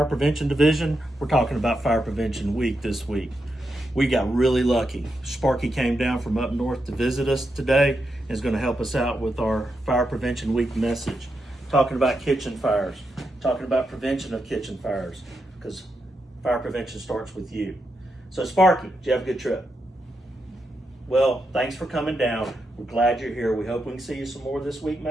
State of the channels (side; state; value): both; normal; correlation 0.85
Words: Prevention Division. We're talking about Fire Prevention Week this week. We got really lucky. Sparky came down from up north to visit us today and is going to help us out with our Fire Prevention Week message. Talking about kitchen fires, talking about prevention of kitchen fires, because fire prevention starts with you. So Sparky, did you have a good trip? Well, thanks for coming down. We're glad you're here. We hope we can see you some more this week,